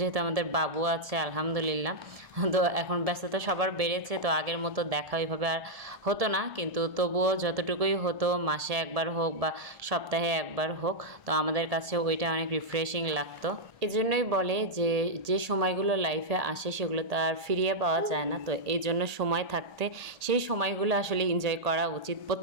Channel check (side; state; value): left; late; 1.8 ms